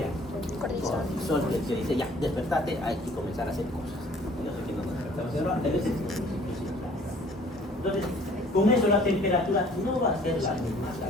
Cortisol, que dice, ya, despertate, hay que comenzar a hacer cosas. Y no sé quién nos despertamos, pero antes veces. Entonces, con eso la temperatura no va a ser la misma,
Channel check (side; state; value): both; normal; correlation 0.55